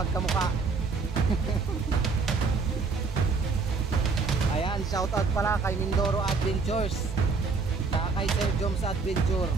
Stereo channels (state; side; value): quieter; left; 4.5 dB